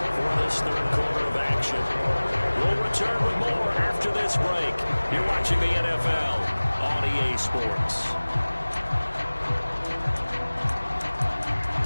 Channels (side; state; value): both; inverted; correlation -1.00